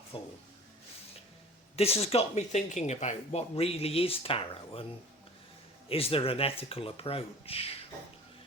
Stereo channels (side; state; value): both; normal; correlation 0.43